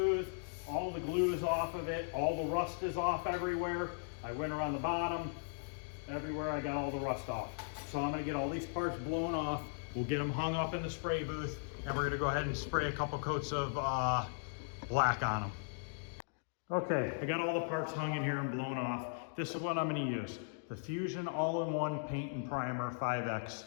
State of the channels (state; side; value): silent; right; digital silence